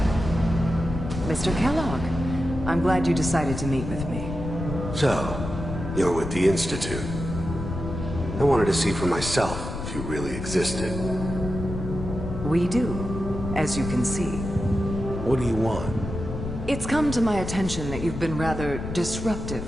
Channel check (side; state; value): left; noise; rumble, 6 dB below the sound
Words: Mr. Kellogg, I'm glad you decided to meet with me. So, you're with the Institute. I wanted to see for myself if you really existed. We do, as you can see. What do you want? It's come to my attention that you've been rather disruptive